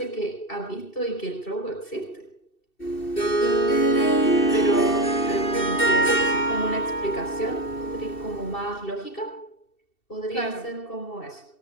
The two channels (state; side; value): late; right; 2.7 ms